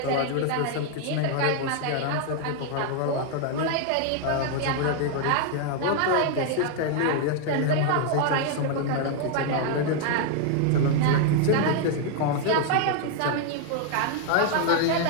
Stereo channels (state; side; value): different; both; correlation 0.00